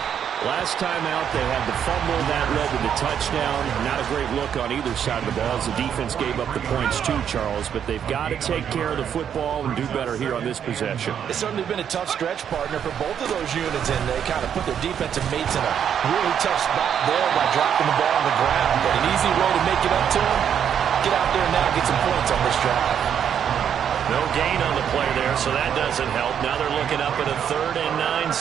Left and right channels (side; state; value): left; quieter; 8.6 dB